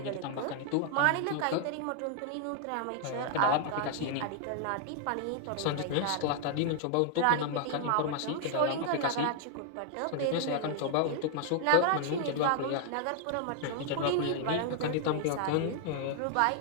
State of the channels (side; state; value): both; different; correlation 0.00